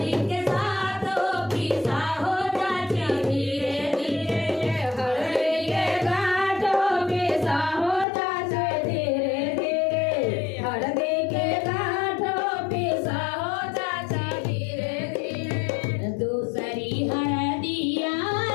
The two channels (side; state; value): right; drops out; at 8.1 s